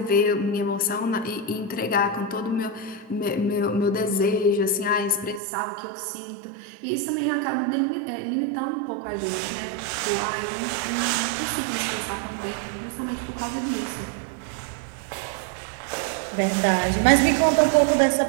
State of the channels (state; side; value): drops out; left; at 5.4 s